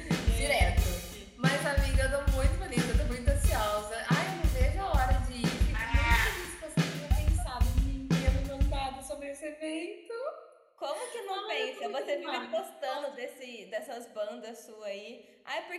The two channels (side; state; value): both; identical; correlation 1.00